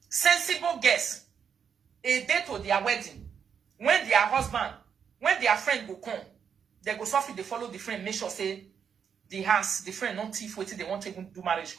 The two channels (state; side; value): quieter; left; 7.3 dB